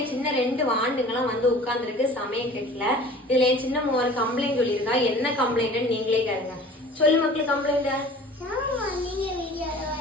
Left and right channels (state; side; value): normal; both; correlation 0.45